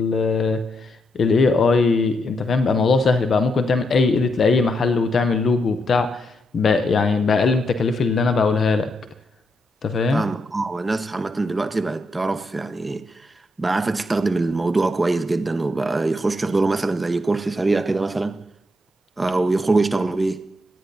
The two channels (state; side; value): normal; both; correlation 0.81